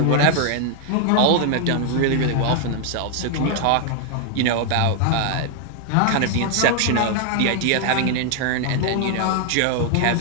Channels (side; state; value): both; different; correlation 0.00